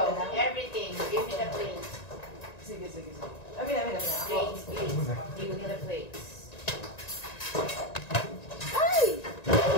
Everything. Give me the plates. Sige. Amin. Ako. Plates, please. Give me the plates. Ay!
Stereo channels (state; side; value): late; right; 1.9 ms